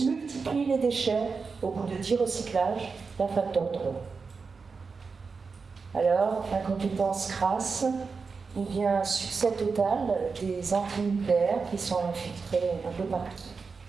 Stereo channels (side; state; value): left; quieter; 4.9 dB